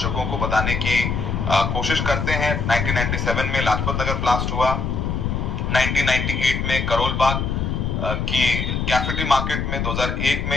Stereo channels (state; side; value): noise; left; rumble, 1 dB below the sound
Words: को बताने की कोशिश करते हैं। 1997 में लाजपत नगर ब्लास्ट हुआ, 1998 में करोल बाग की कैफेटी मार्केट में, 2001